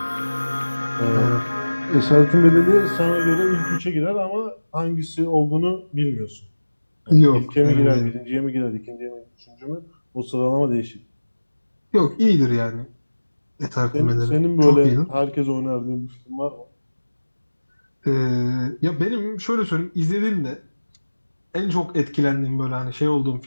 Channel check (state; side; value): inverted; both; correlation -1.00